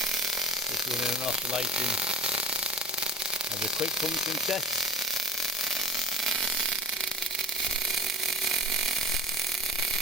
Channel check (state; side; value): normal; both; correlation 0.38